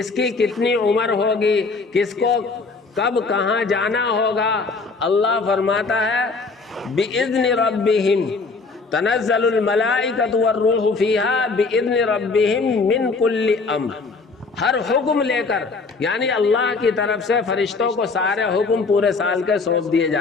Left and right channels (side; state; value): right; quieter; 4.1 dB